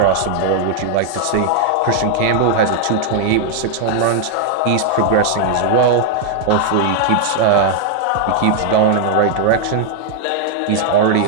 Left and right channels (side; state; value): both; different; correlation 0.00